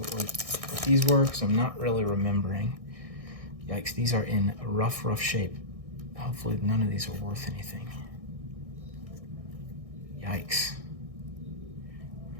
these were, because I'm not really remembering. Yikes, these are in rough shape. Hopefully none of these are worth anything. Yikes.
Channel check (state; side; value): late; left; 1.6 ms